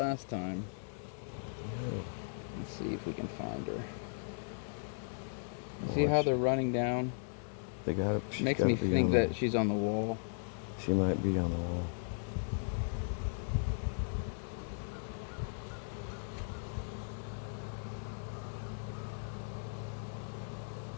time. Let's see if we can find her. You see how they're running down? They gotta. Makes me think that she's on the wall. She might be on the wall.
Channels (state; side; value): silent; right; digital silence